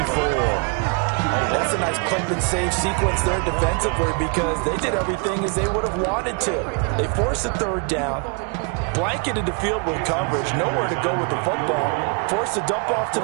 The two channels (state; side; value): quieter; left; 36.1 dB